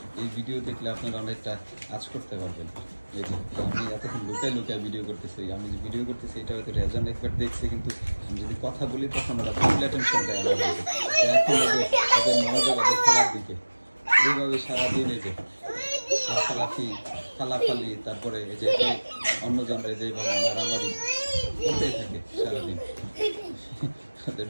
এই ভিডিও দেখলে আপনারা অনেকটা আঁচ করতে পারবেন। এই যে আমি এতক্ষণ লুকায় লুকায় ভিডিও করতেছি, আমি যে ভিডিও করতেছি এটা হয়তো রেজন একবার দেখছে, কিন্তু আমি যদি কথা বলি তখন ওরা ফুল অ্যাটেনশন দেয় আমার দিকে। এখন ওদের ওদের মনোযোগ ওদের খেলার দিকে। এইভাবে সারাদিন এই যে লাফালাফি ফালাফালি, তারপরে এই যে অন্য জনরা যেভাবে মারামারি করতেই থাকে সারাদিন। তাদের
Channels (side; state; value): both; inverted; correlation -1.00